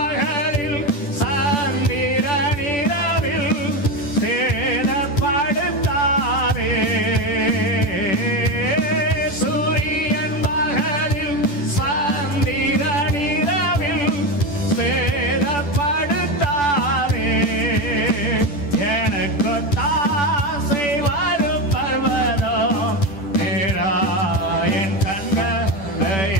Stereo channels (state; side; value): late; right; 10 ms